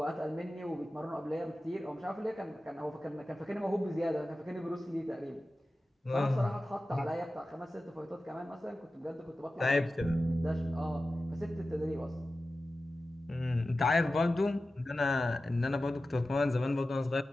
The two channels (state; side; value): normal; both; correlation 0.94